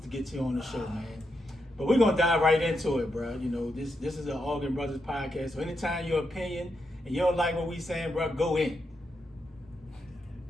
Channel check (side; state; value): both; normal; correlation 0.83